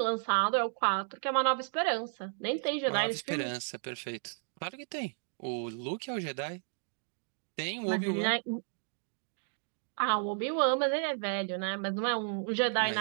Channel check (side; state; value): left; silent; digital silence